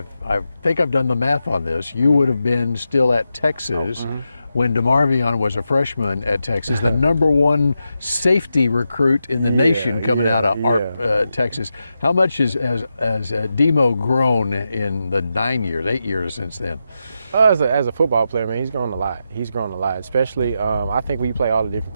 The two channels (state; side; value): inverted; both; correlation -0.88